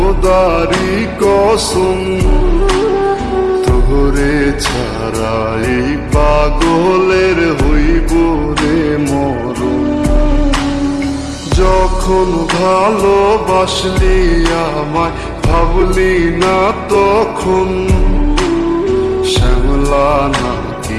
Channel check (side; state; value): both; identical; correlation 1.00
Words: কসম তোরে ছাড়া এই পাগলের হইব রে মরণ। যখন ভালোবাসলি আমায় ভাবলি না তখন, শ্যামলা